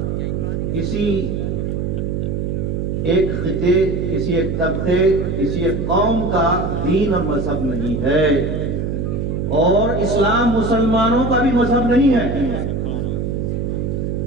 کسی ایک خطے، کسی ایک طبقے، کسی ایک قوم کا دین اور مذہب نہیں ہے، اور اسلام مسلمانوں کا بھی مذہب نہیں ہے،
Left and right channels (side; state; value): right; noise; hum, 1 dB below the sound